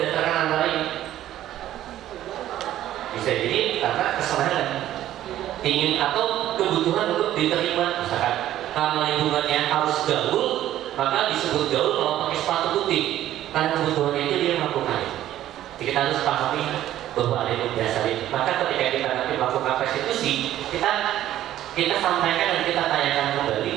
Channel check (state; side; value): quieter; left; 12.9 dB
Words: antara ini. Bisa jadi karena kesenangan, ingin atau kebutuhan untuk diterima. Misalkan kalau lingkungannya harus gaul, maka disebut gaul kalau pakai sepatu putih. Karena kebutuhannya itu dia melakukan. Jadi kita harus pahami bahwa ada yang mendasari. Maka ketika kita nanti melakukan restitusi, kita sampaikan dan kita tanyakan kembali